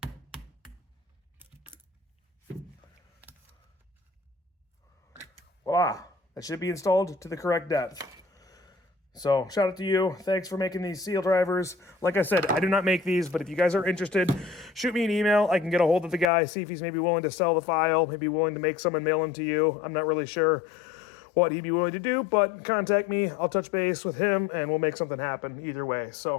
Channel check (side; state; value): right; drops out; at 16.2 s